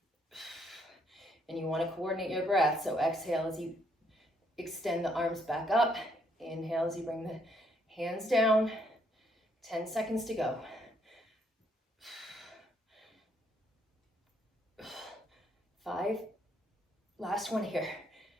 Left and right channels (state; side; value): normal; both; correlation 0.71